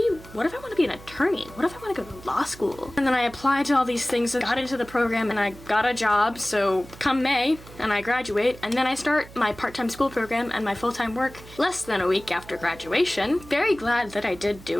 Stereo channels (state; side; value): noise; right; hum, 19 dB below the sound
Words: what if I want to be an attorney? What if I want to go to law school? And then I applied to all these things and got into the program and I got a job. So come May and I graduate, and then I start my part-time school program and my full-time work less than a week after graduation. Very glad that I did